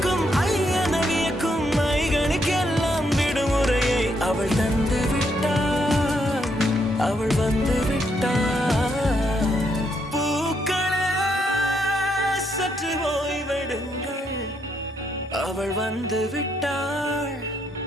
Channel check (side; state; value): both; normal; correlation 0.76